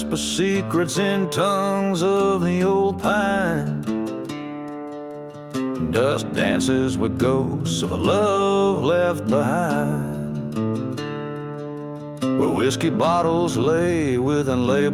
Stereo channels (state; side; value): identical; both; correlation 1.00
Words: secrets in tongues of the old pine. Dust dances with ghosts of a love left behind, where whiskey bottles lay with